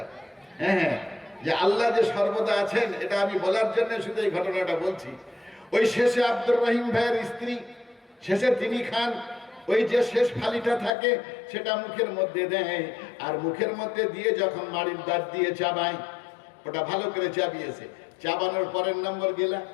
হ্যাঁ, যে আল্লাহ যে সর্বদা আছেন, এটা আমি বলার জন্য শুধু এই ঘটনাটা বলছি। ওই শেষে আব্দুর রহিম ভাইয়ের স্ত্রী শেষে তিনি খান, ওই যে শেষ ফালিটা থাকে সেটা মুখের মধ্যে দেয়, আর মুখের মধ্যে দিয়ে যখন মাড়ির দাঁত দিয়ে চাবায়, ওটা ভালো করে চাবিয়েছে, চাবানোর পরের নম্বর গেলা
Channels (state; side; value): drops out; right; at 10.9 s